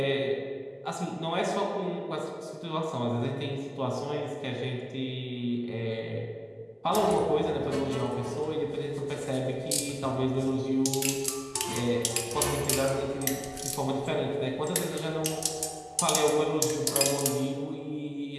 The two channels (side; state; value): both; identical; correlation 1.00